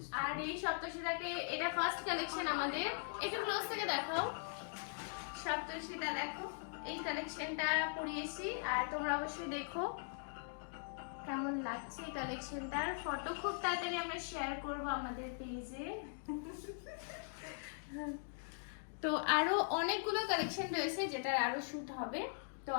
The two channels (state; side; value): silent; right; digital silence